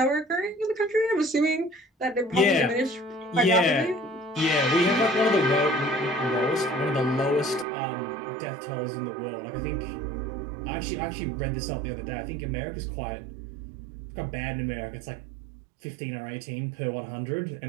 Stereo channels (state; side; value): drops out; left; at 7.7 s